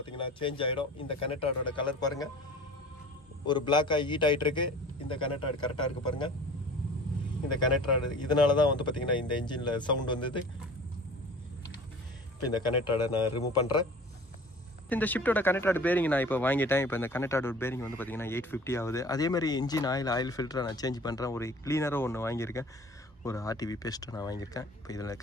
சேஞ்ச் ஆகிடும். இந்த கனெக்ட் ராடோட கலர் பாருங்கள், ஒரு பிளாக்காக ஹீட் ஆகிட்டு இருக்கு. இந்த கனெக்ட் ராடு கரெக்டாக இருக்குது பாருங்கள். இந்த கனெக்ட் ராடு இதனால தான் வந்து பார்த்தீங்கன்னா இந்த இன்ஜினில் சவுண்ட் வந்தது. இப்போ இந்த கனெக்ட் ராடை நான் ரிமூவ் பண்ணுறேன். இந்த ஷிஃப்ட்டோட கனெக்ட் ராட் பேரிங் நான் இப்போ வாங்கிட்டேன். இப்போ இந்த கனெக்ட் ராடோட பேரிங் வந்து பார்த்தீங்கன்னா 850 ஆகுது. அதேமாதிரி இன்ஜின் ஆயில் ஃபில்டரை நான் சேஞ்ச் பண்ணுறேன். ஒரு க்ளீனரும் ஒன்று வாங்கியிருக்கேன். ஒரு RTV பேஸ்ட்டை நான் வாங்கியிருக்கேன். இப்போ இதில்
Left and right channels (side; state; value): both; normal; correlation 0.44